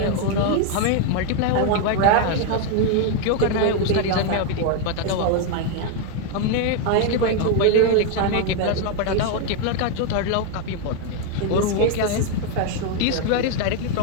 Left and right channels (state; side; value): different; both; correlation 0.00